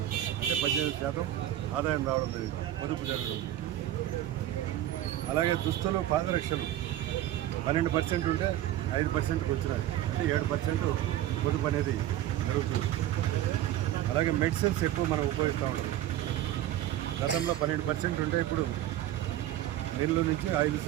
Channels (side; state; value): left; quieter; 13.1 dB